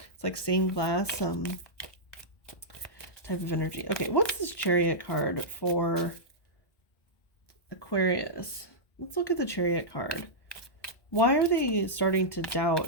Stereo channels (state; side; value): late; right; 1.2 ms